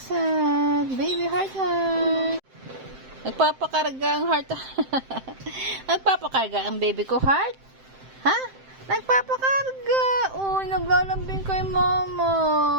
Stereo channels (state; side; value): late; left; 7.7 ms